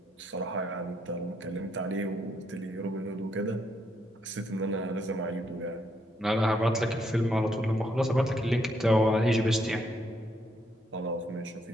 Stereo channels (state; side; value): normal; both; correlation 0.74